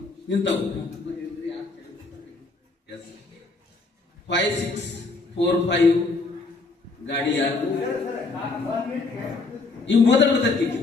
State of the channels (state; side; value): quieter; right; 3.7 dB